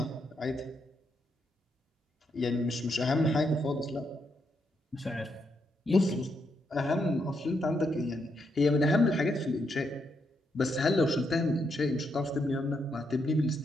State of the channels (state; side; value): normal; both; correlation 0.79